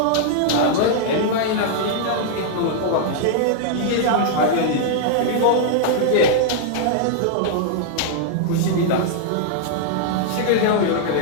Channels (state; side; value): different; both; correlation -0.01